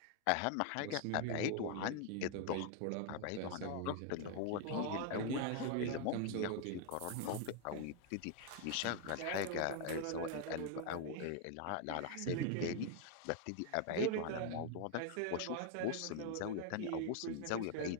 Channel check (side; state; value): both; different; correlation 0.00